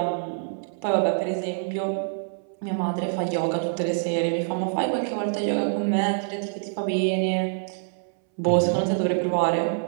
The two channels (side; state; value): left; silent; 61 dB below the other